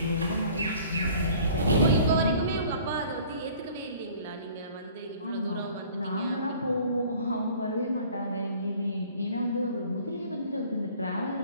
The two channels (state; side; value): inverted; both; correlation -0.50